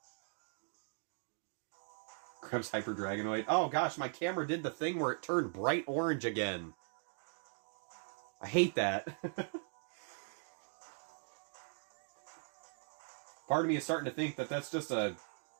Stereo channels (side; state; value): left; silent; 51 dB below the other